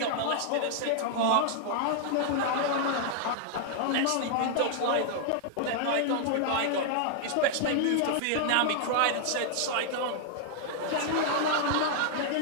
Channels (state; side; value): different; both; correlation -0.01